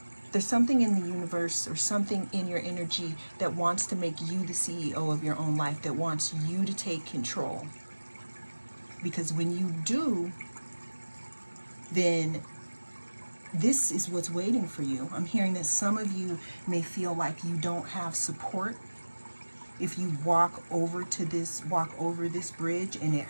There's something in the universe or something in your energy that wants to make you the CEO of your own life, that wants you to take control. Because when you do, then this is what's waiting for you. I'm hearing that some of you may feel like you don't have support. If you walk over this bridge and it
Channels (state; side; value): inverted; both; correlation -1.00